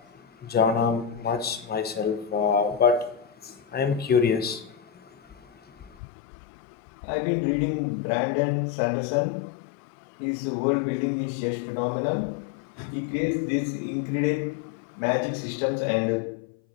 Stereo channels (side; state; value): right; drops out; at 6.0 s